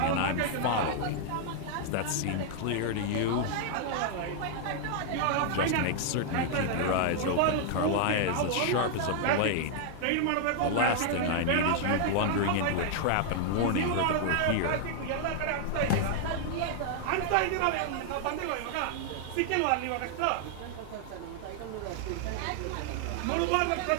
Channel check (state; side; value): different; both; correlation 0.00